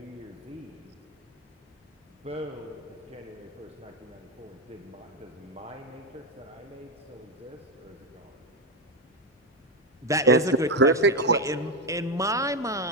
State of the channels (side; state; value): both; normal; correlation 0.10